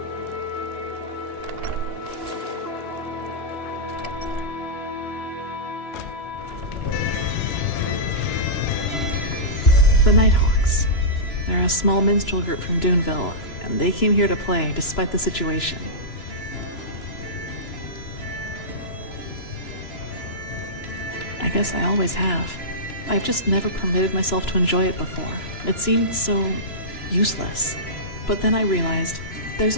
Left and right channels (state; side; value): late; right; 2.9 ms